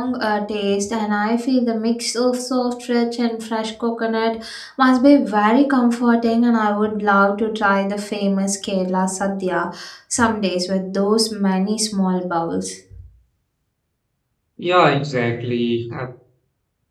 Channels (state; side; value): identical; both; correlation 1.00